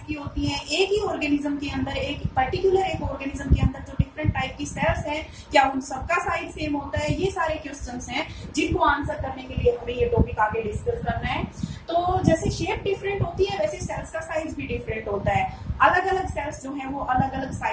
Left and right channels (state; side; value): identical; both; correlation 1.00